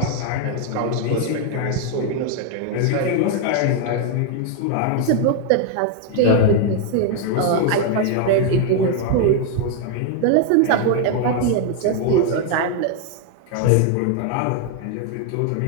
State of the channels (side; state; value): both; different; correlation 0.00